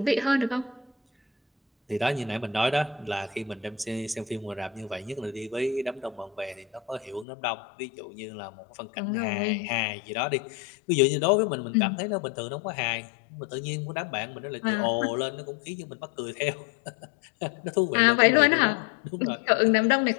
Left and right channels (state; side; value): drops out; right; at 7.2 s